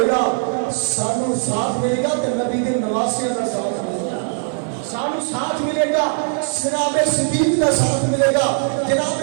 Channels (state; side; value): silent; left; digital silence